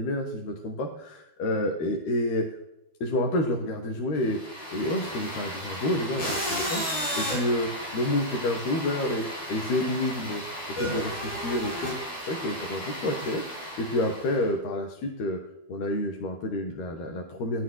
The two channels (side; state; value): right; late; 12 ms